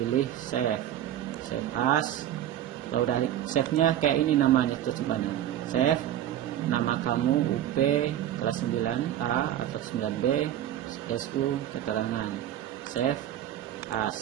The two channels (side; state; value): left; quieter; 11.7 dB